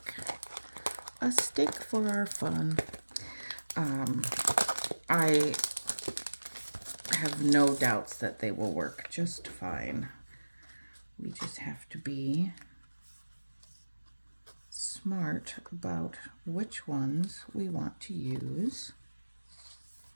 A stick for our fun. I have no doubts that they will work just fine. We just have to be smart about which ones we want to use.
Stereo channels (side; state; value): both; inverted; correlation -1.00